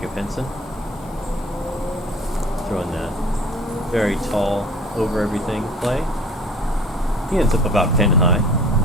Henson. Throwing that very tall, over everything play. He ends up about pin high.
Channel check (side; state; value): both; normal; correlation 0.47